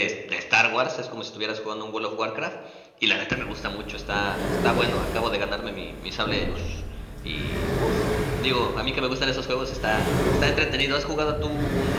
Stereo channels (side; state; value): both; identical; correlation 1.00